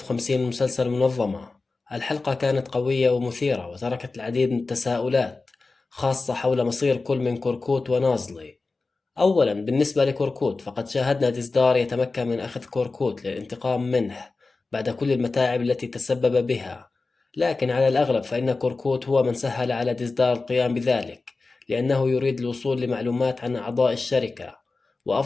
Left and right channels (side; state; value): right; quieter; 3.8 dB